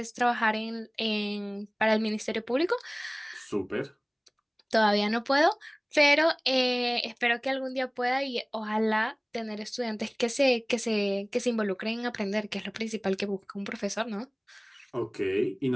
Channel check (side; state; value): both; identical; correlation 1.00